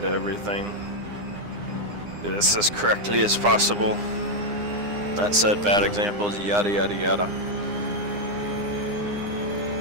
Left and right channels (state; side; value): late; left; 9.8 ms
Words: everything. Do this as correctly as possible. That said, bad examples, yada yada yada.